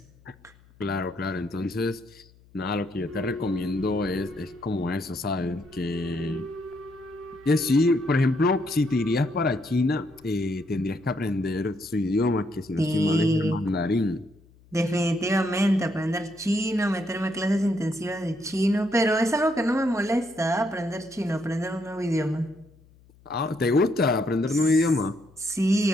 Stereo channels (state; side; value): noise; left; hum, 28 dB below the sound